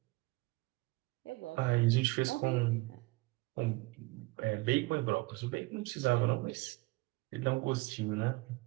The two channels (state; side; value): quieter; left; 23.5 dB